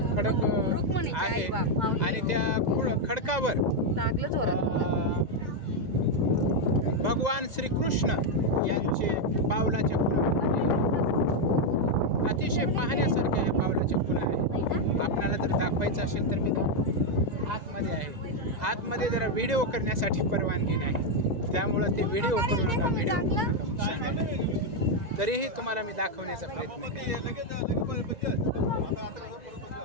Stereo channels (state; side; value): late; left; 1.9 ms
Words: खडक आहे आणि त्या खडकावर भगवान श्रीकृष्ण यांचे पावलाच्या खुणा अतिशय पाहण्यासारख्या ह्या पावलाच्या खुणा आहेत. आपल्याला जर दाखवायचं असेल तर मी आतमध्ये आहे. आतमध्ये जरा व्हिडिओ करण्यासाठी परवानगी नाही, त्यामुळं ते व्हिडिओ करू नका, व्हिडिओ करू नका म्हणून सांगायला. तरीही तुम्हाला मी दाखवण्याचा प्रयत्न केला.